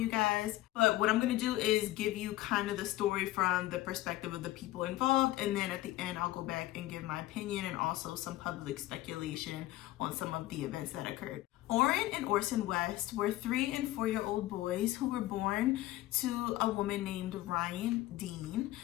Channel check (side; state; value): right; quieter; 16.3 dB